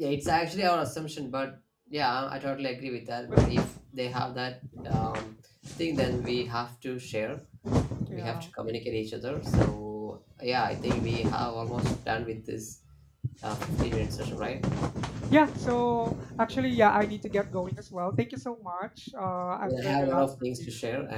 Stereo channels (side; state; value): both; identical; correlation 1.00